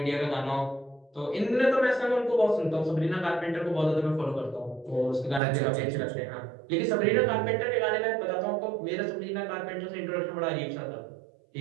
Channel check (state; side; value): drops out; left; at 5.4 s